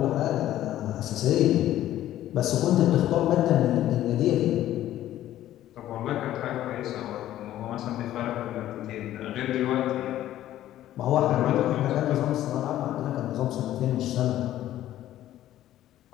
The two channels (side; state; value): right; quieter; 13.2 dB